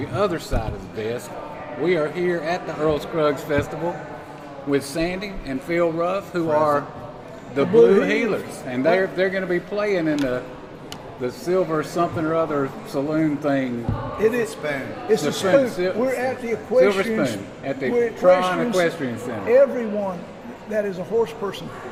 other side of the desk. We are here at the Earl Scruggs Festival with Sandy and Phil Ruff, who are the Blue Healers, and they're going to be playing in the silver something or other saloon thing. It is spoon. It's a spoon. We're at the equestrian. Silver Spoon at the Tron Equestrian Center. Everyone that is a horse person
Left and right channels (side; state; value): both; identical; correlation 1.00